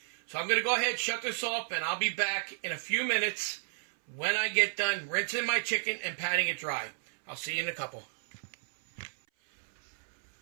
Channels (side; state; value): left; silent; 56 dB below the other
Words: So I'm going to go ahead and shut this off, and I'll be back in a few minutes when I get done rinsing my chicken and patting it dry. I'll see you in a couple.